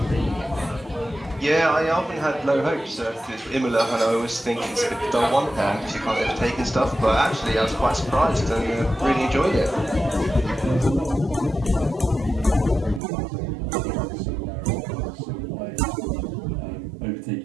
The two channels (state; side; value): drops out; left; at 13.0 s